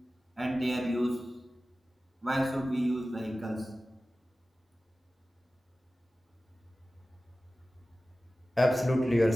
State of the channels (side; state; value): both; normal; correlation 0.96